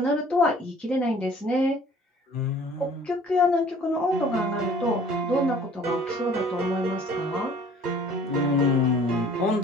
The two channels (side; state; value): both; normal; correlation 0.51